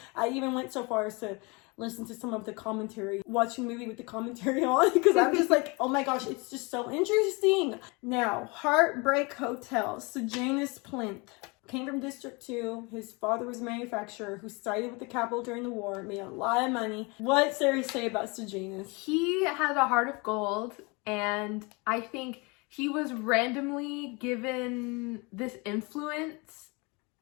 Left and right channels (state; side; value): quieter; right; 28.2 dB